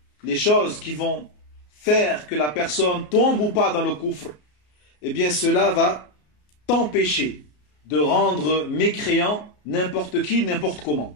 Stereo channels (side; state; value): right; late; 33 ms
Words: les choses qui vont faire que la personne tombe ou pas dans le coufre, eh bien cela va t'empêcher de rendre mécréant n'importe qui, n'importe